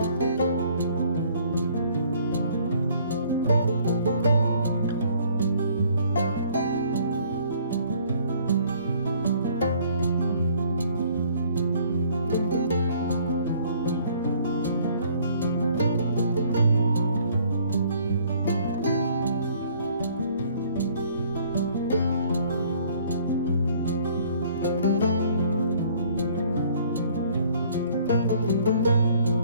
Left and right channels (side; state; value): both; inverted; correlation -0.59